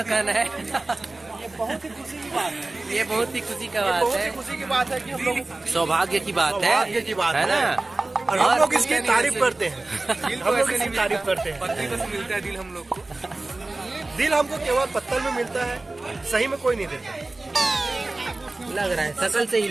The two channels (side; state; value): left; quieter; 3.0 dB